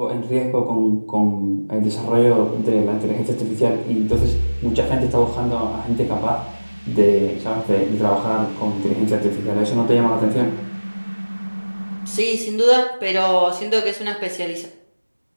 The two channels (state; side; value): inverted; both; correlation -1.00